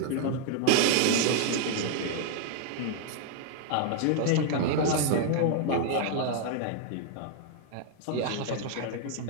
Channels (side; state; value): both; different; correlation 0.00